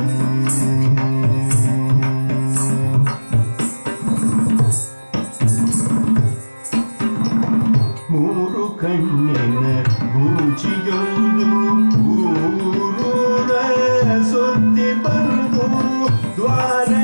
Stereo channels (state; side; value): inverted; both; correlation -1.00